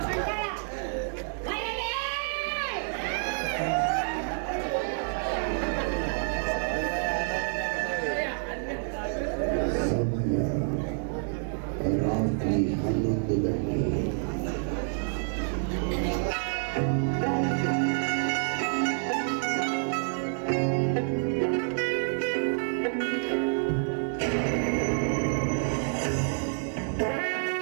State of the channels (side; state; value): left; silent; 59 dB below the other